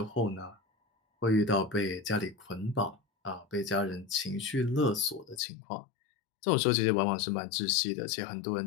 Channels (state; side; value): drops out; right; at 5.4 s